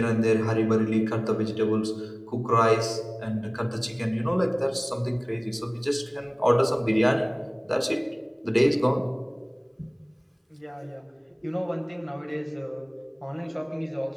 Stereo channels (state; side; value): identical; both; correlation 1.00